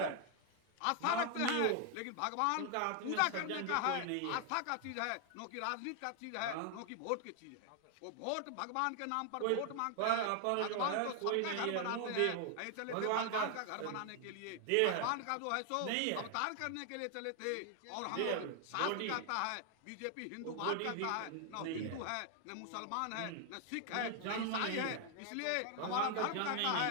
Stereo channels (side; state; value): both; different; correlation 0.00